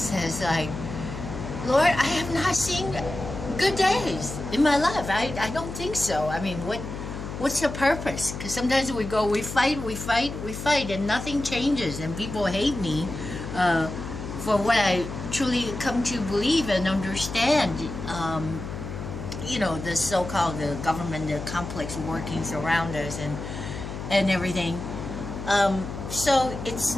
like, Lord, I have not seen good days in my life. I don't think so. I mean, what's the purpose? Because sometimes we fight, and nothing changes, and people hate me for what I truly come to believe and understand. The so-called the government, the complex workings around us, and everything. So it's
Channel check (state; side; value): noise; left; hum, 8 dB below the sound